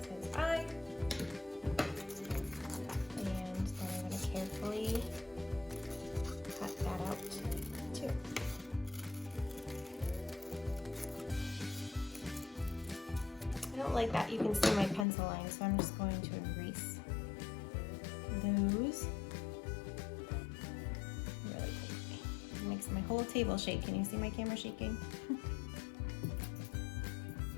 his eye. And then I'm going to carefully cut that out too. I don't like that you can see my pencil line, so I'm just going to erase those really quickly. It makes my whole table shake. Can you see my camera shaking?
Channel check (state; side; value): drops out; right; at 15.1 s